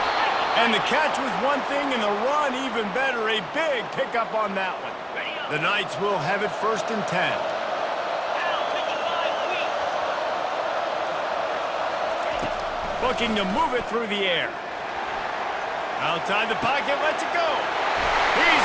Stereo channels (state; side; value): identical; both; correlation 1.00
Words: And the catch was one thing, and the run even better. A big pickup on that one. The Knights will have it 1st and 10. Looking to move it through the air. Outside the pocket, lets it go.